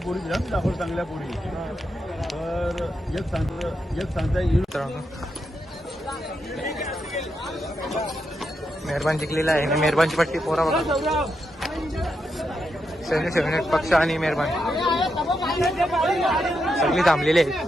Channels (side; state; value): both; normal; correlation 0.84